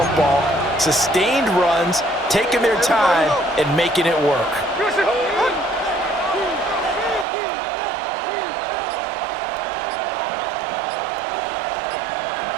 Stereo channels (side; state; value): left; drops out; at 7.2 s